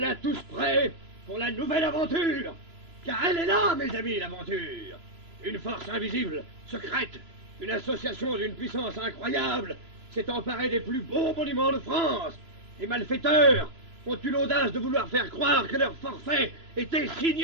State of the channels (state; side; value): late; left; 3.0 ms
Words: tous prêts pour la nouvelle aventure. Car elle est là, mes amis, l'aventure. Une force invisible, secrète, une association d'une puissance incroyable s'est emparée des plus beaux monuments de France. Les malfaiteurs ont eu l'audace de vouloir faire croire que leur forfait était